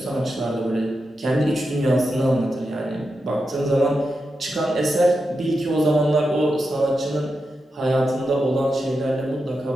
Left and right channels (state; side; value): normal; both; correlation 0.88